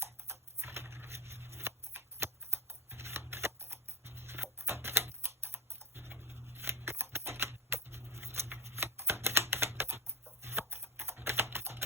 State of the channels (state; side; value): normal; both; correlation 0.22